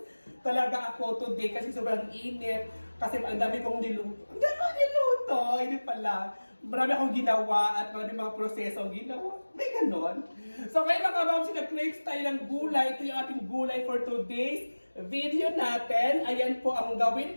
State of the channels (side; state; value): both; inverted; correlation -1.00